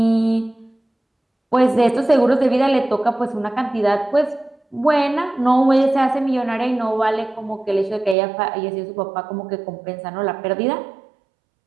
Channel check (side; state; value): left; drops out; at 8.2 s